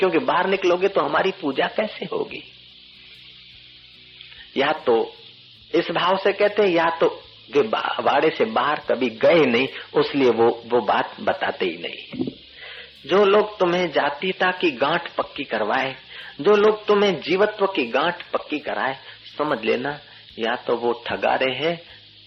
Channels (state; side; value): identical; both; correlation 1.00